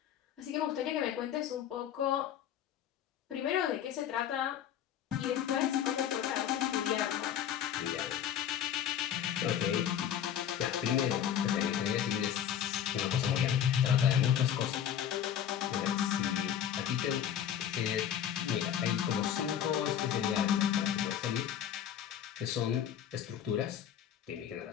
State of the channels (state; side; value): quieter; right; 9.7 dB